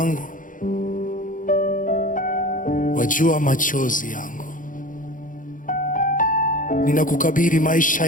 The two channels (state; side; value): late; right; 0.39 ms